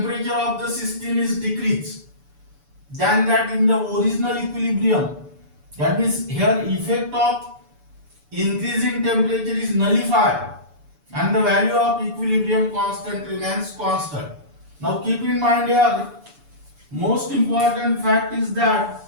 of the system is decreased than that in the original equilibrium. That means here effect of increasing temperature is nullified and the value of equilibrium constant remains constant. Now keep in mind here, most important fact is that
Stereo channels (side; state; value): left; late; 6.9 ms